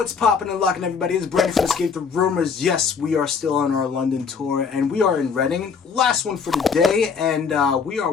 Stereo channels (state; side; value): quieter; right; 5.9 dB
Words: popping and locking, everybody? It's Brandon from Escape the Roomers. Yes, we are still on our London tour, and we are in Reading. Last one for the day, and we are